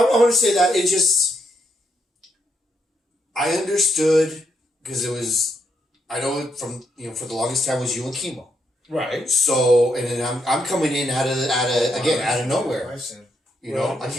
want to say that it just. I understood because it was. I know from for the longest time was you and Chemo. Right. So and then I'm coming in out of nowhere. I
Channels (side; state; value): both; normal; correlation 0.78